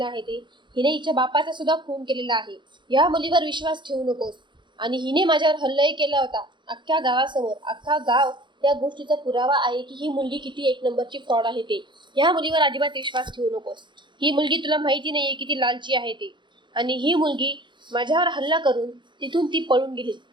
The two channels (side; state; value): left; late; 0.23 ms